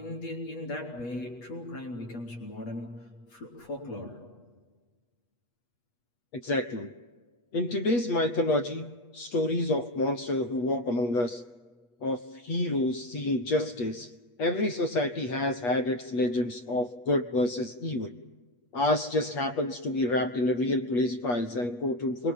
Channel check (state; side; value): late; right; 8.3 ms